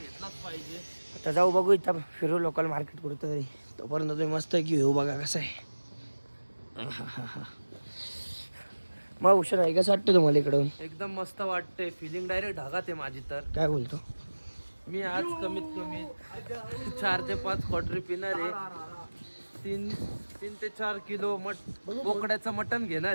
पाहिजे. आता जाऊ बघू इथं फिरू लोकल मार्केट कुठं तरी. तोपर्यंत तुम्ही मस्त की घेऊ बघा कसं आहे. मग उशीर आहे कसं वाटतं तुम्हाला इकडून? एकदम मस्त वाटते. फिलिंग डायरेक्ट ढगात आहे माझी. तर काय बोलतो? मी आज कमीत कमी 4 ते 5 क्वार्टरी पिणार आहे. 3 ते 4 किलो बोकड्याचं मटण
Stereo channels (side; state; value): both; inverted; correlation -1.00